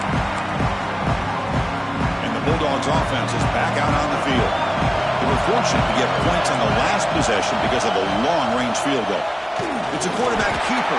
Bulldogs offense is back out on the field. They were fortunate to get points on the last possession because of a long-range field goal. It's a quarterback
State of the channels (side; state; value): both; identical; correlation 1.00